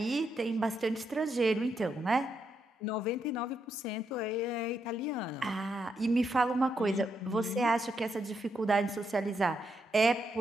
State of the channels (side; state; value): both; normal; correlation 0.80